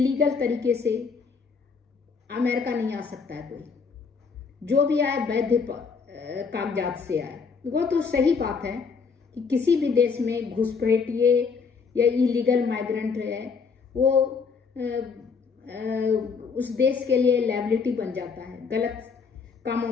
तरीके से अमेरिका नहीं आ सकता है। कोई जो भी आए वैध कागजात से आए। वो तो सही बात है कि किसी भी देश में घुसपैठिए या इलीगल माइग्रेंट है, वो उस देश के लिए लायबिलिटी बन जाता है, गलत कामों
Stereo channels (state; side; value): quieter; right; 5.4 dB